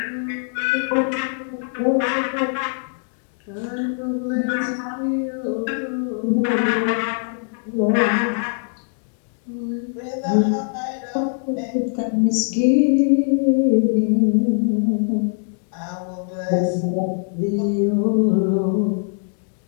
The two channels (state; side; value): silent; right; 58 dB below the other